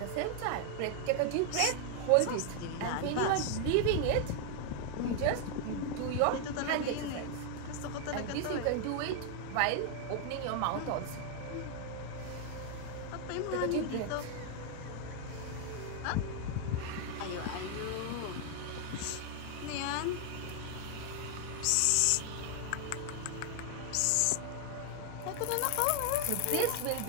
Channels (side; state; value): both; different; correlation 0.00